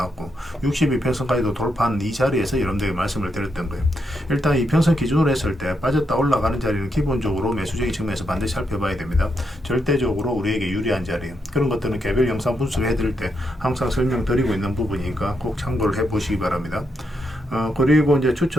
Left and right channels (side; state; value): both; normal; correlation 0.81